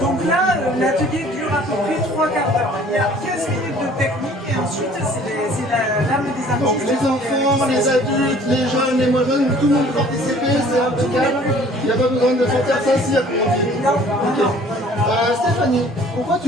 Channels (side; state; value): both; normal; correlation 0.53